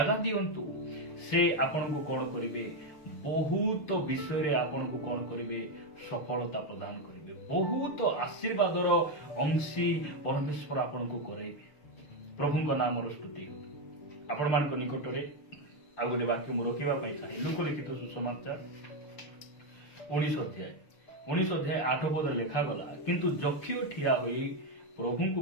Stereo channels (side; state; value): right; late; 6.7 ms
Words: ଦିଅନ୍ତୁ। ସେ ଆପଣଙ୍କୁ କଣ କରିବେ? ବହୁତ ବିଷୟରେ ଆପଣଙ୍କୁ କଣ କରିବେ? ସଫଳତା ପ୍ରଦାନ କରିବେ। ବହୁତ ଆଶୀର୍ବାଦର ଅଂଶୀ ପରମେଶ୍ୱର ଆପଣଙ୍କୁ କରାଇବେ। ପ୍ରଭୁଙ୍କ ନାମର ସ୍ତୁତି ହେଉ। ଆପଣମାନଙ୍କ ନିକଟରେ ଆଉ ଗୋଟେ ବାକ୍ୟ ମୁଁ ରଖିବା ପାଇଁ ଚାହେଁ। ଲୁକ ଲିଖିତ ସୁସମାଚାର 19 ଅଧ୍ୟାୟ 8 ଲେଖାଗଲା, କିନ୍ତୁ ଯକ୍ଷିୟ ଠିଆ ହୋଇ ପ୍ରଭୁଙ୍କୁ